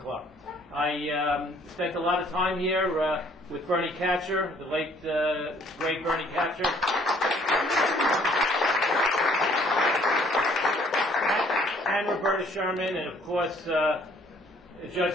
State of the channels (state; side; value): normal; both; correlation 0.60